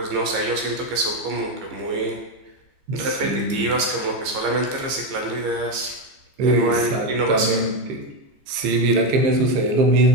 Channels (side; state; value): left; late; 15 ms